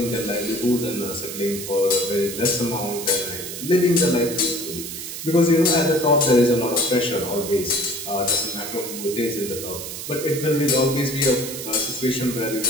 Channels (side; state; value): right; noise; hiss, 8 dB below the sound